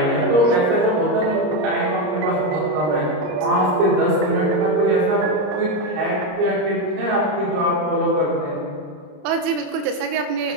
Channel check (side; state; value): left; late; 34 ms